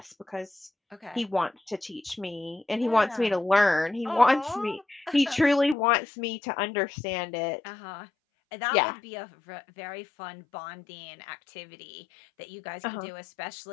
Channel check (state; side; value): drops out; right; at 5.8 s